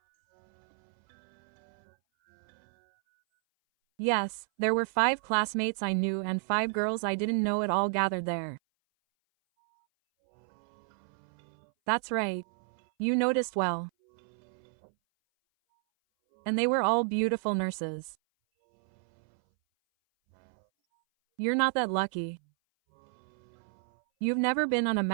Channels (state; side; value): silent; left; 57 dB below the other